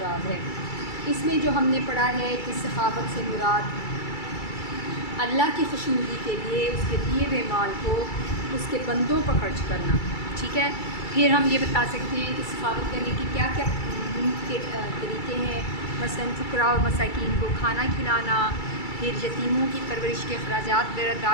ہے۔ اس میں جو ہم نے پڑھا ہے کہ سخاوت سے مراد اللہ کی خوشنودی کے لیے اس کے دیے ہوئے مال کو اس کے بندوں پر خرچ کرنا، ٹھیک ہے۔ پھر ہم یہ بتا سکتے ہیں کہ سخاوت کرنے کی کیا کیا کے طریقے ہیں، مثلا فقراء اور مساکین کو کھانا کھلانا، پھر یتیموں کی پرورش کے اخراجات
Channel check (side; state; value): right; late; 2.3 ms